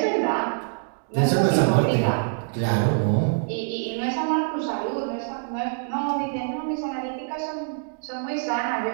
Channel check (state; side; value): silent; left; digital silence